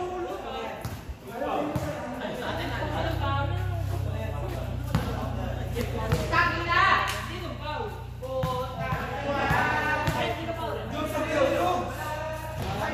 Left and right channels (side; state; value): both; identical; correlation 1.00